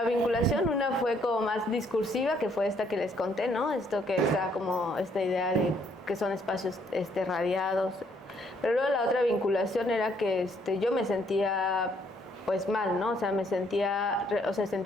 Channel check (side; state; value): both; normal; correlation 0.68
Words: vinculación, una fue como más discursiva, que fue esta que les conté, ¿no? Esto que está como esta idea de que son espacios radiados. Pero luego la otra vinculación era que yo me sentía pues mal, ¿no? O sea,